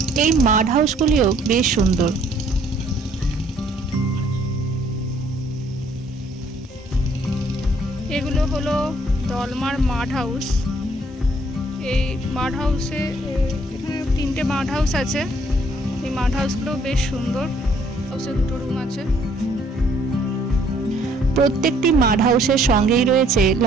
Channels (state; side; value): normal; both; correlation 0.63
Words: এই মাড হাউসগুলিও বেশ সুন্দর। এগুলো হলো দলমার মাড হাউস। এই মাড হাউসে এখানে 3টে মাড হাউস আছে। এই মাড হাউসগুলো বেশ সুন্দর। হাউসে 2টো রুম আছে। প্রত্যেকটি মাড হাউসের সঙ্গেই রয়েছে